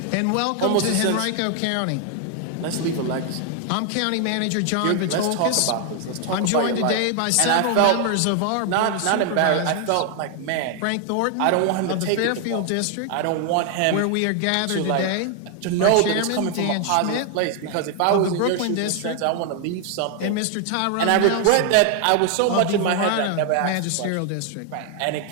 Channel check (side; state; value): both; different; correlation 0.00